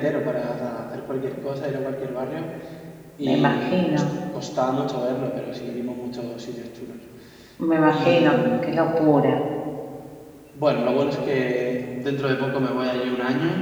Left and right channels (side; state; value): both; identical; correlation 1.00